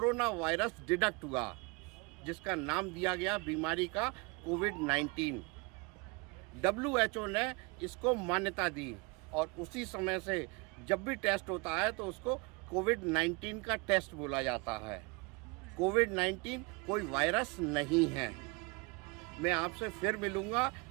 वायरस डिटेक्ट हुआ, जिसका नाम दिया गया बीमारी का कोविड-19। WHO ने इसको मान्यता दी, और उसी समय से जब भी टेस्ट होता है तो उसको कोविड-19 का टेस्ट बोला जाता है। कोविड-19 कोई वायरस नहीं है। मैं आपसे फिर मिलूंगा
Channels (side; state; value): left; quieter; 28.0 dB